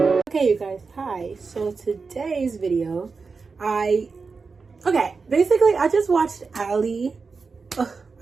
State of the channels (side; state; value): left; quieter; 4.7 dB